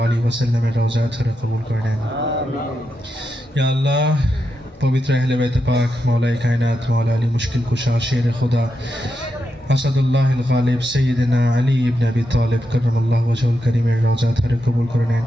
আলিহি ওয়াসাল্লামের রওজা থেকে কবুল করে নেন। ইয়া আল্লাহ, পবিত্র আহলে বাইত পাক, মাওলায়ে কায়নাত, মাওলা আলী মুশকিল কুশা, শের খুদা আসাদুল্লাহ আল গালিব সৈয়দনা আলী ইবনে আবি তালিব কররামাল্লাহু ওয়াজহুল কারীমের রওজা থেকে কবুল করে নেন।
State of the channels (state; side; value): normal; both; correlation 0.85